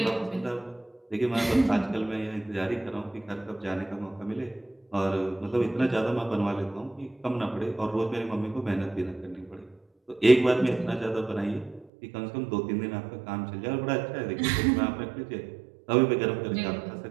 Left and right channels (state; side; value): drops out; left; at 11.9 s